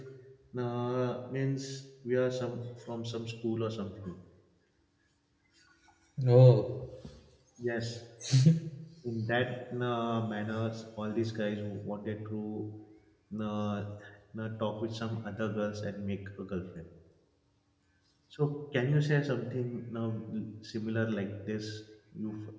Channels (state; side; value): identical; both; correlation 1.00